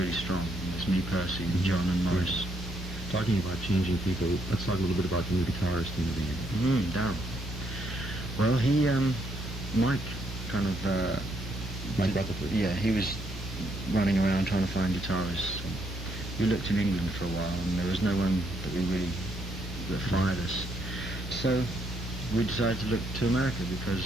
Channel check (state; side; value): normal; both; correlation 0.74